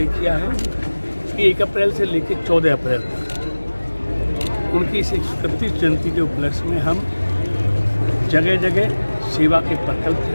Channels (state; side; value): inverted; both; correlation -1.00